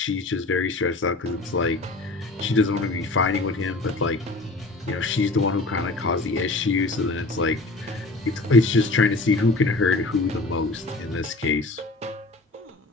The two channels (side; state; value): right; quieter; 3.2 dB